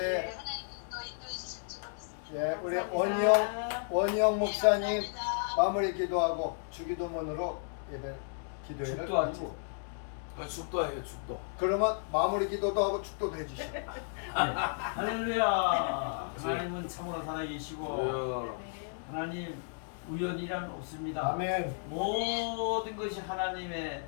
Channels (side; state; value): right; silent; digital silence